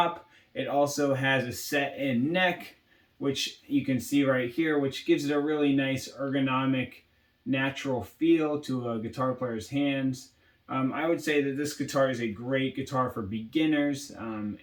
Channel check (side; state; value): both; identical; correlation 1.00